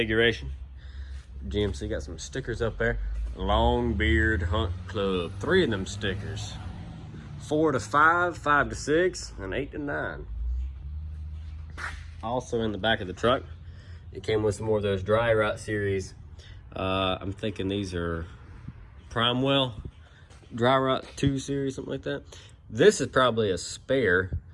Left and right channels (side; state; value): both; identical; correlation 1.00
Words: GMC got some stickers up there. Long Beard Hunt Club. 3 of them stickers. 4 to 5, 5 to 6, and 8 to 9. Also in the back of the truck, it came with some more of those Dry Rot series. I'm thinking these are Primewell Dry Rot 2 series, something like that. This is probably a spare.